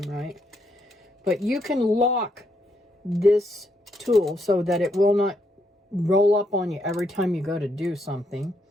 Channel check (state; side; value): normal; both; correlation 0.76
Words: right. But you can lock this tool so that it will not roll up on you every time you go to do something,